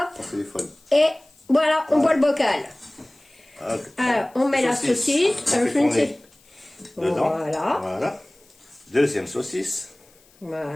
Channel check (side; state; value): left; noise; hiss, 30 dB below the sound